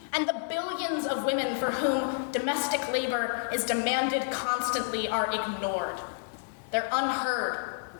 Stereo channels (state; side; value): silent; right; digital silence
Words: and the billions of women for whom domestic labor is demanded constantly are ignored. They're unheard,